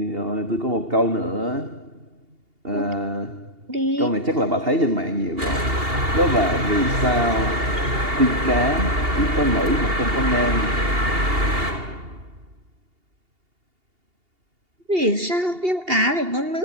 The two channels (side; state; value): left; late; 2.8 ms